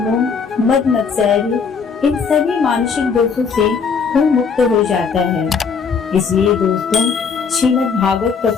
मद मत्सर्य इन सभी मानसिक दोषों से वो मुक्त हो जाता है। इसलिए दोस्तों, श्रीमद् भागवत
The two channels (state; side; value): quieter; right; 5.7 dB